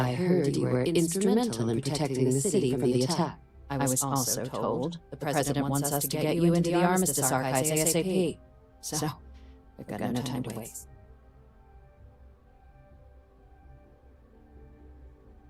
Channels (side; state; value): both; identical; correlation 1.00